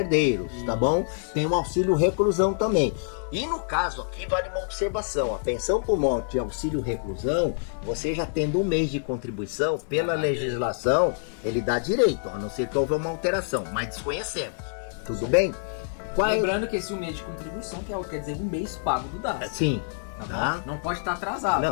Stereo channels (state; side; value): silent; right; digital silence